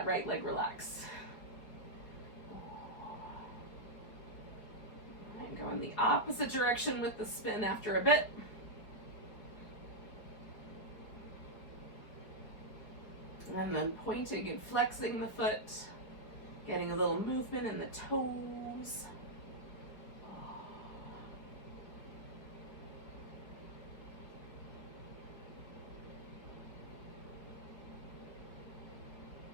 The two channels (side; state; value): right; late; 4.8 ms